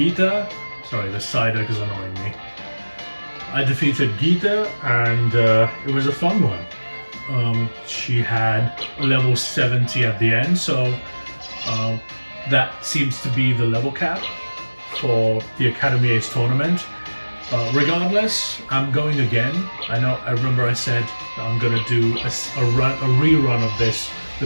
sorry the cider is annoying me. I defeated Geeta and it was a fun one. She had a level 70 at the end, so uh, that seems to be the level cap for the Academy Ace tournament. Regardless, I'm going again. I remember I said that I'm gonna do a rerun of this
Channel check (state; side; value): inverted; both; correlation -1.00